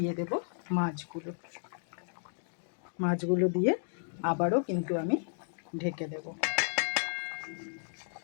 দেব মাছগুলো। মাছগুলো দিয়ে আবারও কিন্তু আমি ঢেকে দেব।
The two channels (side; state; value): right; silent; digital silence